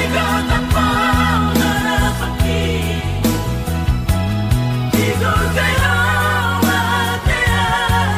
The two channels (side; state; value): both; identical; correlation 1.00